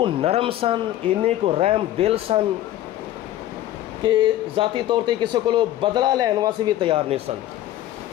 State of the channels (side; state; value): right; quieter; 13.5 dB